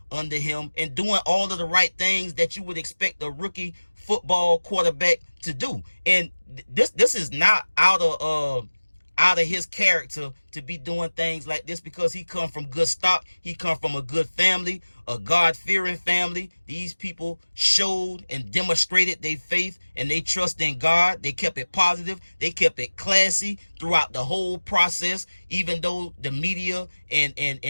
under him and doing all of the right things that you would expect a rookie football quarterback to do. And this is not out of his character to be doing things like this, because he come from good stock. He come from a good family, a God-fearing family. These people showed and demonstrated their faith and they trust in God. They kept it positive. They kept it classy throughout the whole process, even though the media and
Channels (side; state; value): both; inverted; correlation -1.00